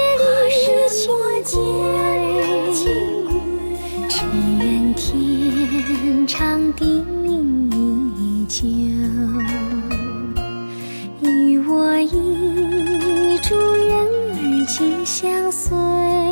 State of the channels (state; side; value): inverted; both; correlation -1.00